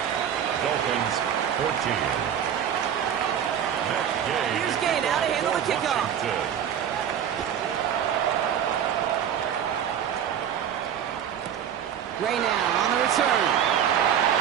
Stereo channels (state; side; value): quieter; left; 9.1 dB